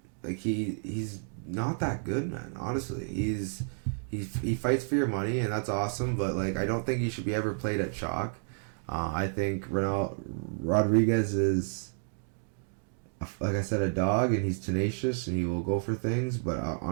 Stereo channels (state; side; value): silent; left; digital silence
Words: he's not that good, man. Honestly, he fights for your money, and that's awesome. But like, I don't think he should be ever played at chalk. I think Rodriguez is, like I said, a dog, and he's tenacious, and he will go for things. But